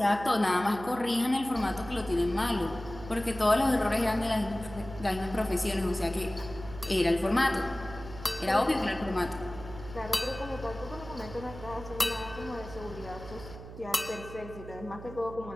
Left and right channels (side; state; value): right; noise; hum, 13 dB below the sound